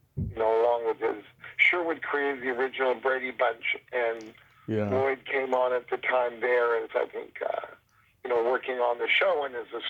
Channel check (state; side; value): identical; both; correlation 1.00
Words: along with his Sherwood created the original Brady Bunch, and yeah, Lloyd came on at the time there as I think working on the show and as a